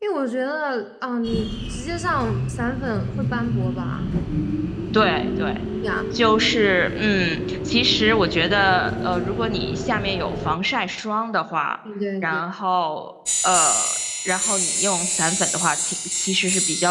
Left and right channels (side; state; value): both; identical; correlation 1.00